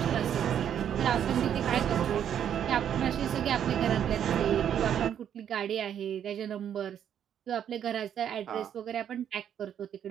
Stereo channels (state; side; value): quieter; left; 9.4 dB